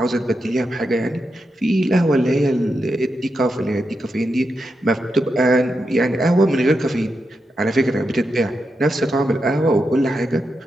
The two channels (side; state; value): both; normal; correlation 0.86